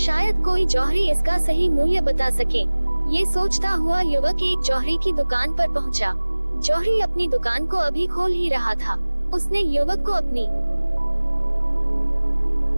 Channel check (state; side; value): inverted; both; correlation -1.00